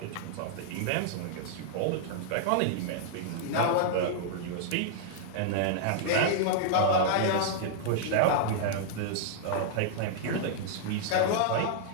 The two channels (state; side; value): different; both; correlation -0.01